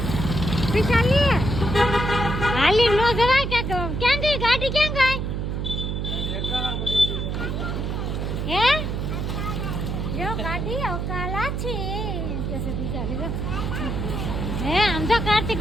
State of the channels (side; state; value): right; noise; hum, 2 dB below the sound